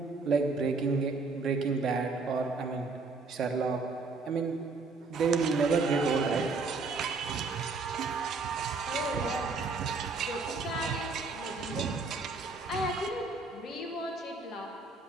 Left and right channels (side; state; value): left; quieter; 3.9 dB